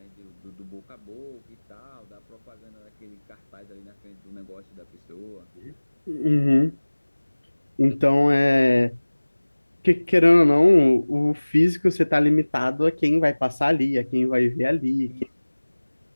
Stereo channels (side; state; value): both; inverted; correlation -1.00